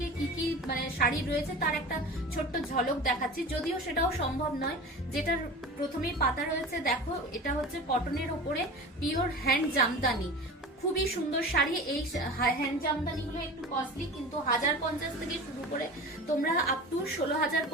কি কি শাড়ি রয়েছে তার একটা ছোট্ট ঝলক দেখাচ্ছি, যদিও সেটাও সম্ভব নয়। যেটার প্রথমেই পাতা রয়েছে দেখো, এটা হচ্ছে কটনের ওপরে পিওর হ্যান্ড জামদানি। খুবই সুন্দর শাড়ি। এই হ্যান্ড জামদানি গুলো একটু কস্টলি, কিন্তু 1050 থেকে শুরু করে তোমরা আপ টু 16,000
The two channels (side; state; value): both; normal; correlation 0.34